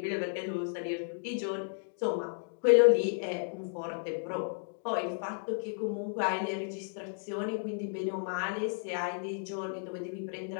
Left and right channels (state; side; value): silent; right; digital silence